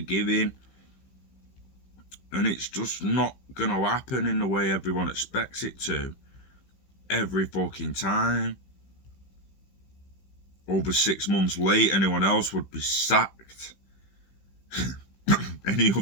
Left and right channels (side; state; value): right; late; 16 ms